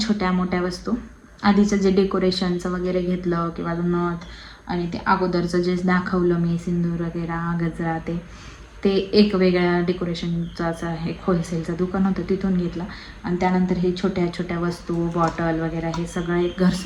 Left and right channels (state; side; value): identical; both; correlation 1.00